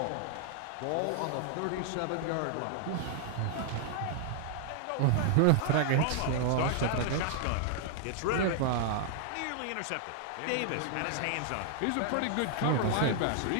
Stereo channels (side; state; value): both; different; correlation 0.00